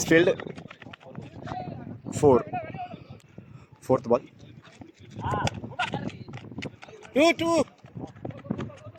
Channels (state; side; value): identical; both; correlation 1.00